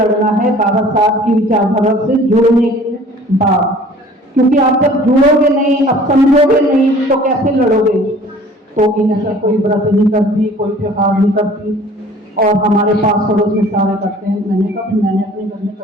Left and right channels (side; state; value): both; normal; correlation 0.50